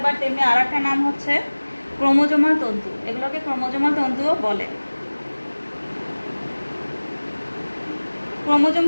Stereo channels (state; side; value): inverted; both; correlation -1.00